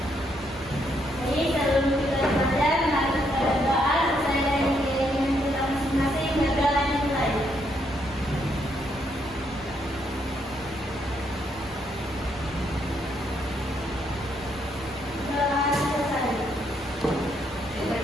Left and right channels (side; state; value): both; normal; correlation 0.75